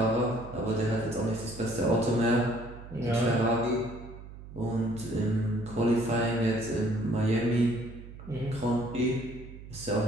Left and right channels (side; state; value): right; noise; hum, 15 dB below the sound